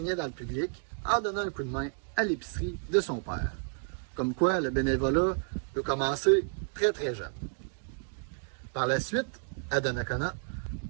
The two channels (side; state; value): left; silent; 57 dB below the other